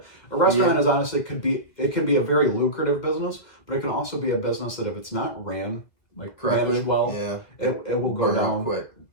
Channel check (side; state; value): right; late; 2.1 ms